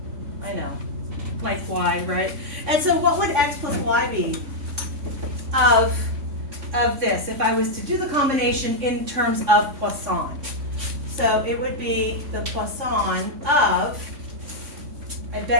I know, like y, right? And so what would x plus y be of this if I was to do the combination in terms of Poisson? So it would be the Poisson of, I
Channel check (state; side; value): late; left; 3.5 ms